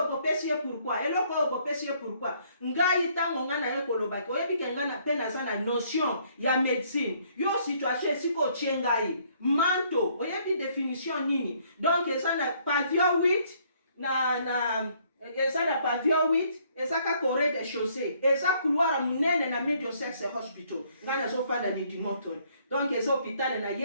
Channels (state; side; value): inverted; both; correlation -0.65